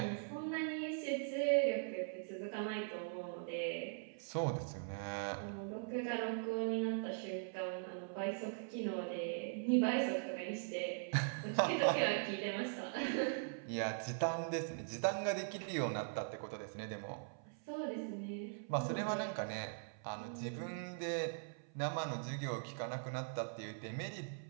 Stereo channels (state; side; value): silent; left; 50 dB below the other